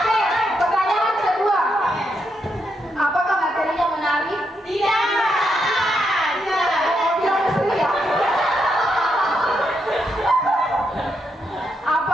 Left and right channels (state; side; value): normal; both; correlation 0.80